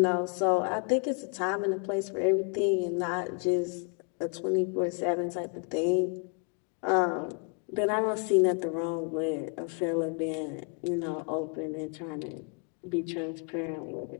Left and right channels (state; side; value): quieter; right; 36.8 dB